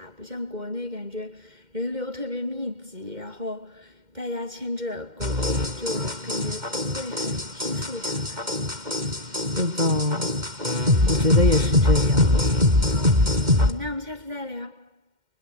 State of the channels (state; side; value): late; left; 2.1 ms